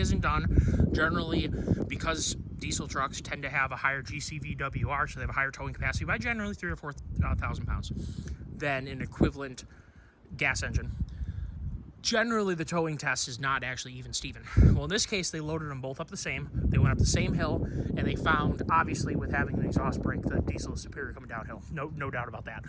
done. Generally, because diesel trucks tend to have a higher GCVWR, so they have a higher towing capacity by generally 3,000 or 4,000 pounds than an equivalent gas engine. generally the towing test is not actually even Steven. Well, in this case, they loaded them both up the same. They went up the same hill, and they found, obviously, with having an exhaust brake, the diesel is superior coming downhill. No doubt about that.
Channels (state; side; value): identical; both; correlation 1.00